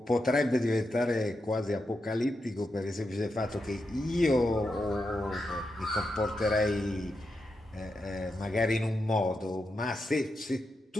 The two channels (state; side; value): normal; both; correlation 0.86